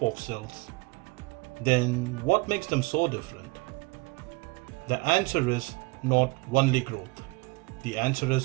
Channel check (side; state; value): left; quieter; 25.9 dB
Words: of cells, then what makes them so different? The answer is not only growth. The answer